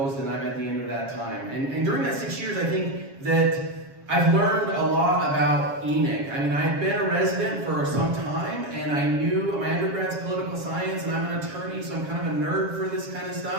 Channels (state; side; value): late; left; 7.3 ms